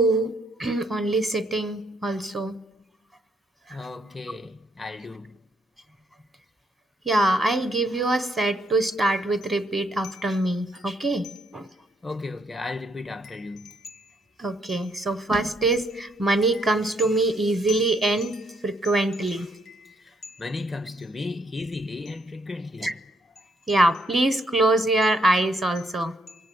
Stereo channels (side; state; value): both; normal; correlation 0.72